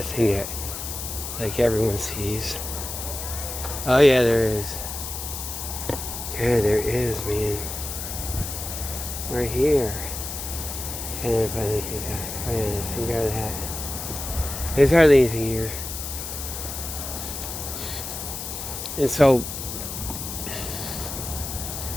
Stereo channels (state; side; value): noise; left; hiss, 6 dB below the sound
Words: thing that, like everyone sees. Oh yeah, there is. Yeah, there is, man. Right here. And then finally, some guy with a hat. There's hardly anything here. And so,